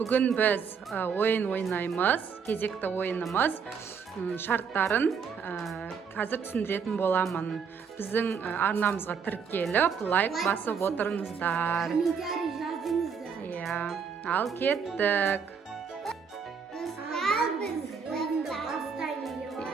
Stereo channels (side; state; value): left; quieter; 6.3 dB